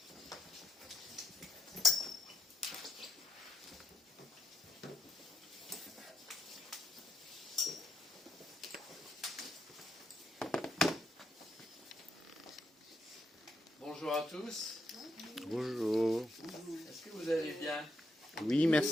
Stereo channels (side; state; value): both; normal; correlation 0.79